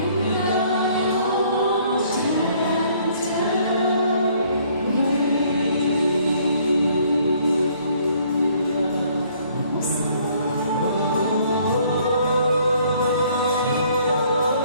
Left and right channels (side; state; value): both; inverted; correlation -0.62